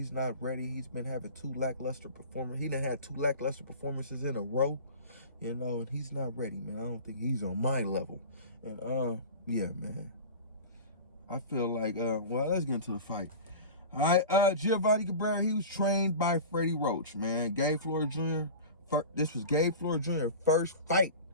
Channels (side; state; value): both; inverted; correlation -0.35